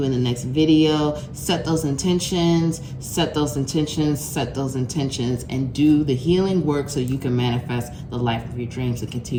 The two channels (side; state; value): both; identical; correlation 1.00